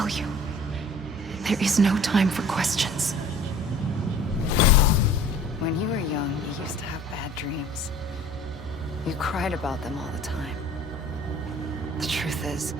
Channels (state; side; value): normal; both; correlation 0.47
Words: you. There is no time for questions. When you were young, you used to have bad dreams. You cried about them all the time. The truth is,